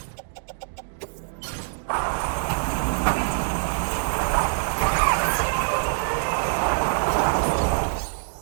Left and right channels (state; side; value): silent; left; digital silence